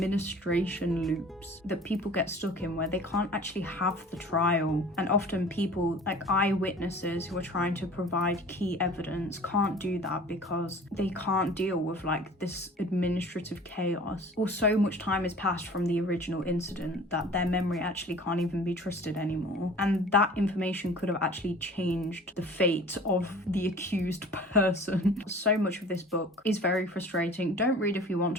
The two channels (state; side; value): normal; both; correlation 0.45